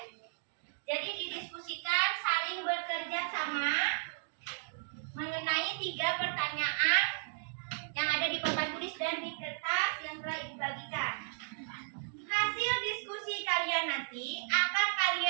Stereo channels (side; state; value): left; silent; digital silence